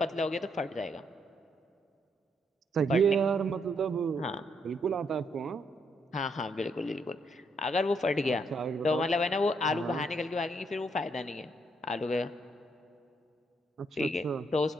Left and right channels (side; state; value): both; normal; correlation 0.75